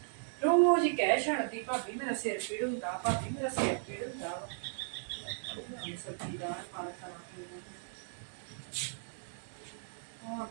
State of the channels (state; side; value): silent; left; digital silence